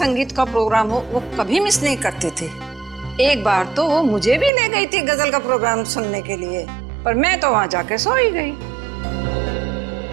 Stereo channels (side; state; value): left; drops out; at 4.5 s